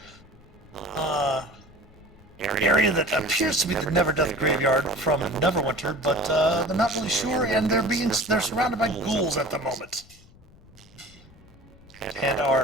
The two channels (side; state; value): left; noise; rumble, 24 dB below the sound